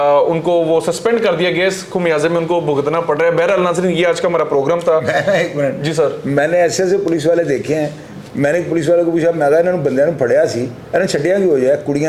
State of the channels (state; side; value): identical; both; correlation 1.00